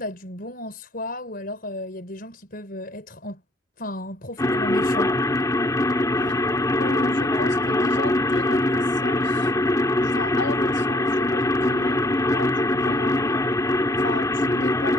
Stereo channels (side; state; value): both; normal; correlation 0.61